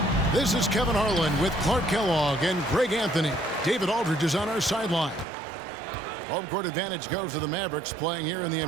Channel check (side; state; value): left; drops out; at 5.2 s